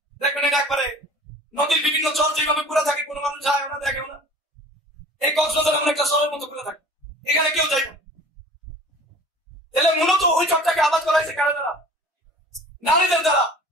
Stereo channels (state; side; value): normal; both; correlation 0.44